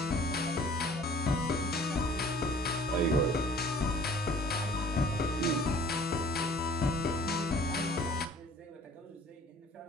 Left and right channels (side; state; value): both; normal; correlation 0.51